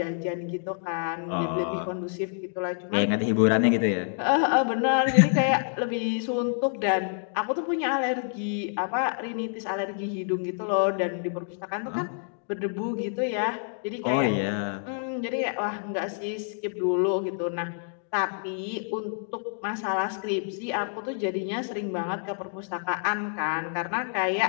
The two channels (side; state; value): right; silent; digital silence